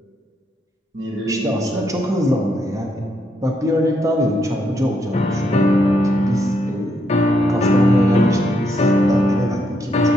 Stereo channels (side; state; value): both; normal; correlation 0.77